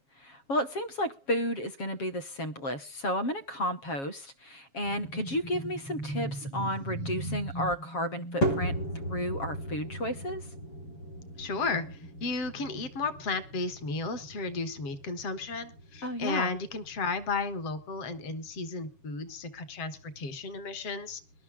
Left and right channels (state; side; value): late; right; 7.3 ms